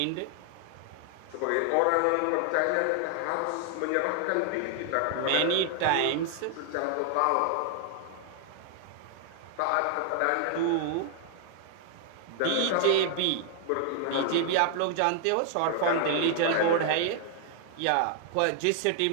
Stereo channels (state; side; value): different; both; correlation 0.00